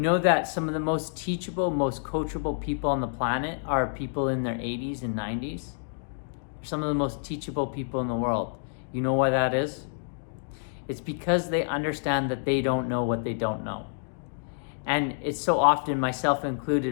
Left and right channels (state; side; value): silent; right; digital silence